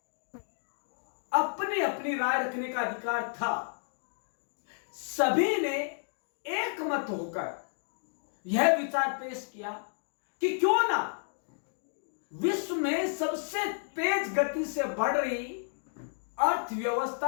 अपनी अपनी राय रखने का अधिकार था। सभी ने एक मत होकर यह विचार पेश किया कि क्यों ना विश्व में सबसे तेज गति से बढ़ रही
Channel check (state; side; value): silent; right; digital silence